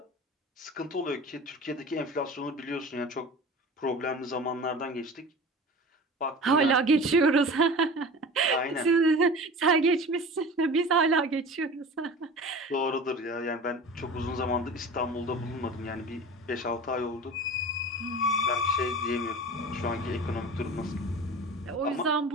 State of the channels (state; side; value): normal; both; correlation 0.36